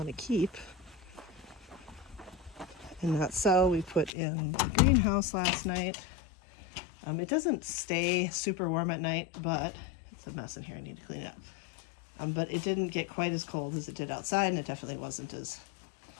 to keep and not sell. We put in the greenhouse last night. It doesn't stay super warm at night, but it's a mess in here. I need to clean it up. But it didn't get quite as cold as it did outside, and it definitely wasn't as,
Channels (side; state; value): right; drops out; at 4.1 s